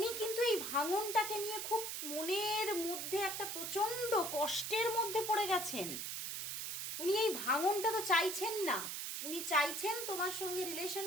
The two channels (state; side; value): noise; right; hiss, 4 dB below the sound